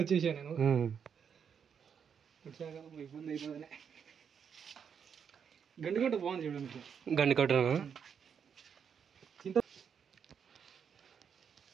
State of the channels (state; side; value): quieter; left; 7.2 dB